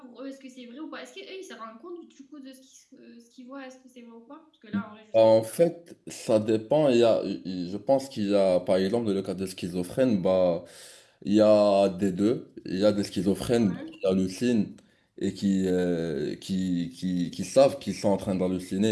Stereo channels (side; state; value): both; identical; correlation 1.00